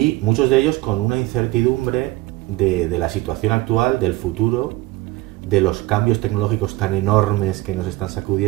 muchos de ellos con una incertidumbre de la situación actual, del futuro, de los cambios tecnológicos tan enormes que nos están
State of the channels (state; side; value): quieter; left; 19.1 dB